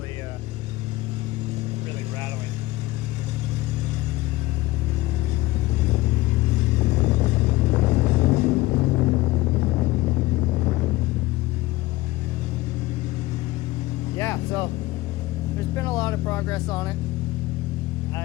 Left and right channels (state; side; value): quieter; right; 18.7 dB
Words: rattling. Yeah, so there's been a lot of progress on it.